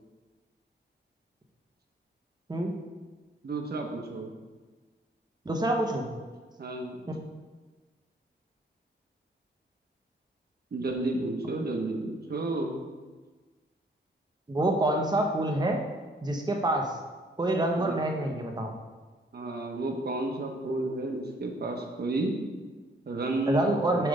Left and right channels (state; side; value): normal; both; correlation 0.62